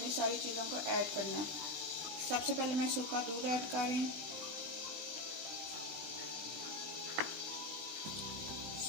सारी चीज़ों को ऐड करना है। सबसे पहले मैं सूखा दूध ऐड कर रही हूँ,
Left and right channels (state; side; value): late; left; 19 ms